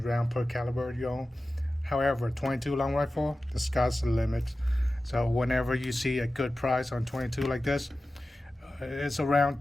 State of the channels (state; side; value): normal; both; correlation 0.95